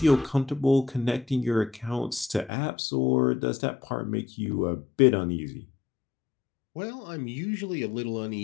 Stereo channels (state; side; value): drops out; right; at 2.5 s